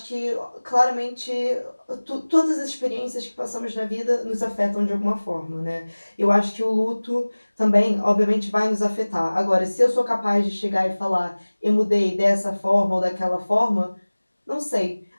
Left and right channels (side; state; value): both; inverted; correlation -1.00